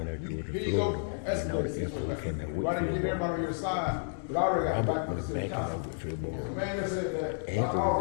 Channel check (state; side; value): silent; right; digital silence